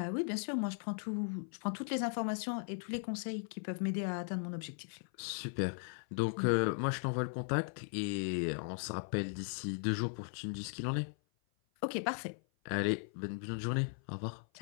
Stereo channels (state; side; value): silent; right; 53 dB below the other